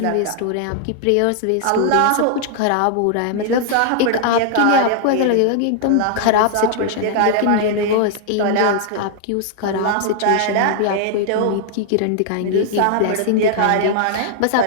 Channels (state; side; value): different; both; correlation 0.00